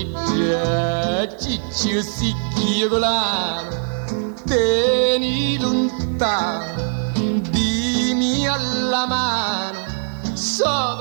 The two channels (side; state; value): left; silent; 65 dB below the other